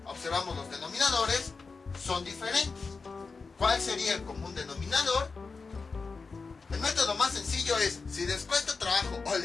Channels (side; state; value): right; quieter; 4.5 dB